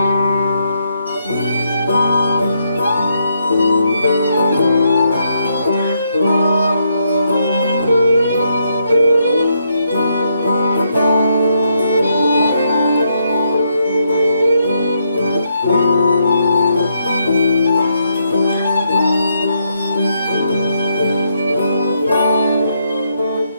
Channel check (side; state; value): both; inverted; correlation -0.77